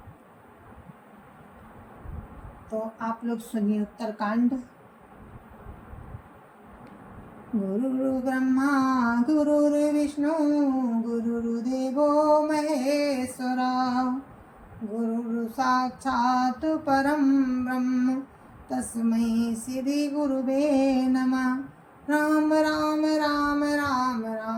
तो आप लोग सुनिए उत्तरकांड। गुरुर् ब्रह्मा गुरुर्विष्णु गुरुर्देवो महेश्वरा गुरुर् साक्षात् परं ब्रह्म तस्मै श्री गुरुवे नमः। राम राम राम राम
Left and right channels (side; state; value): both; identical; correlation 1.00